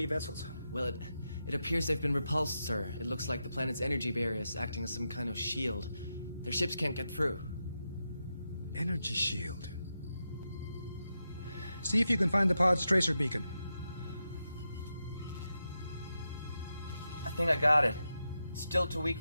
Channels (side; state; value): both; inverted; correlation -0.87